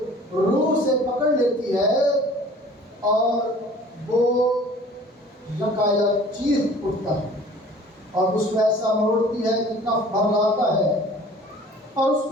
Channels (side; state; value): both; normal; correlation 0.48